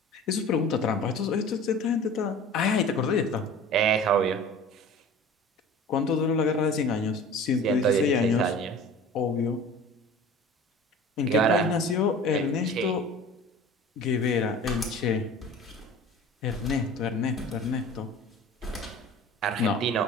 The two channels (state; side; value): normal; both; correlation 0.41